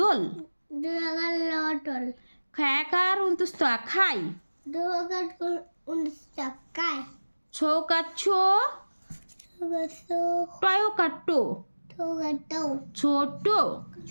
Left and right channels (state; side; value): inverted; both; correlation -1.00